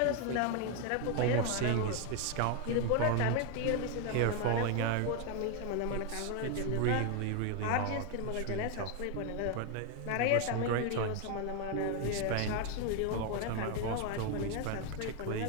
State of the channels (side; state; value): both; different; correlation 0.01